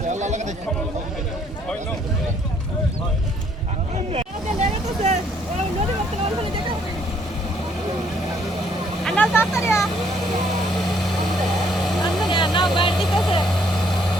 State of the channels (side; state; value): both; normal; correlation 0.66